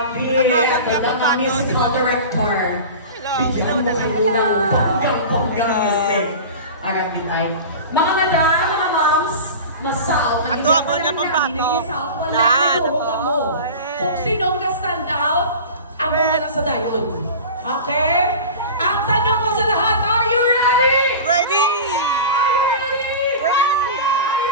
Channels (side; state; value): both; inverted; correlation -0.33